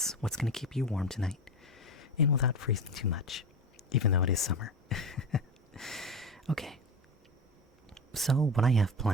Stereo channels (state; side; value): normal; both; correlation 0.25